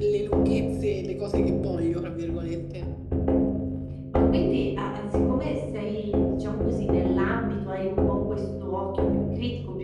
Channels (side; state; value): both; identical; correlation 1.00